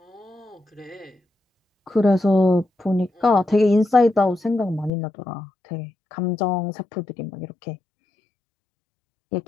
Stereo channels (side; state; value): right; drops out; at 4.9 s